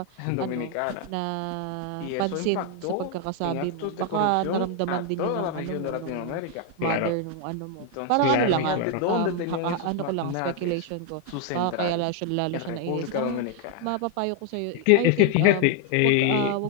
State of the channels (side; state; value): both; different; correlation 0.00